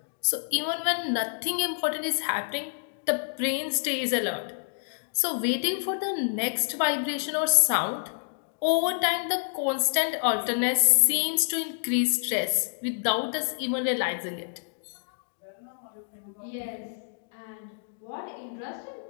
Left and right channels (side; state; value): right; silent; digital silence